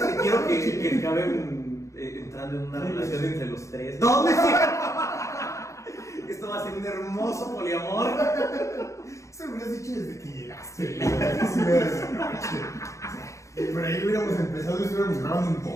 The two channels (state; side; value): late; right; 0.15 ms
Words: que quiero que acaben entrando en una relación entre los tres. ¡No, me Esto va a ser un hermoso poliamor. Eso lo hubieras dicho desde que llegaste. Sí, por ahí hubiéramos empezado y estuviéramos grabando un